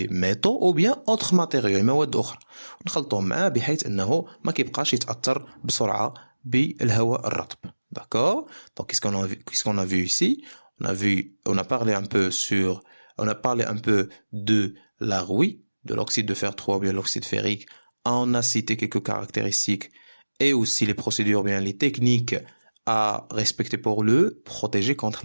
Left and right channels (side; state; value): both; inverted; correlation -1.00